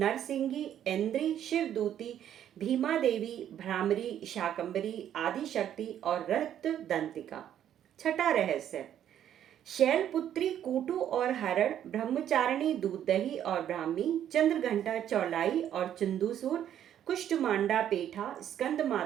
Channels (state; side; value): quieter; left; 10.4 dB